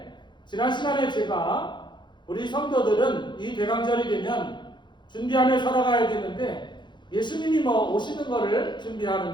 지난 시간에 제가 우리 성도들은 이 대강절이 되면 준비하며 살아가야 되는데, 예수님이 뭐 오시는 거를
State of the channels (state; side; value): late; right; 0.22 ms